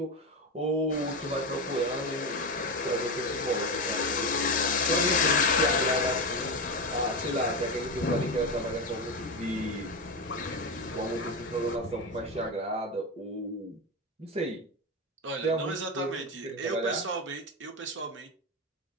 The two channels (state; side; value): normal; both; correlation 0.15